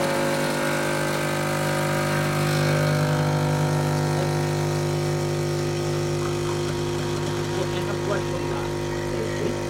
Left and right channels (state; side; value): identical; both; correlation 1.00